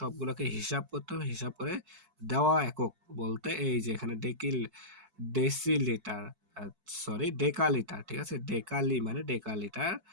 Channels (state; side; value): late; left; 4.5 ms